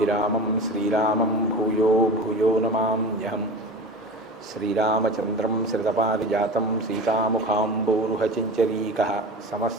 श्रीरामं भूयो भूयो नमाम्यहम्। श्रीरामचन्द्रं श्रितपारिजातं सीतामुखाम्बोरुहचिञ्चरीकः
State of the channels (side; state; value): both; normal; correlation 0.32